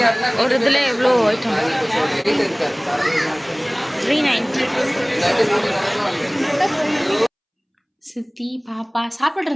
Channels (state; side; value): identical; both; correlation 1.00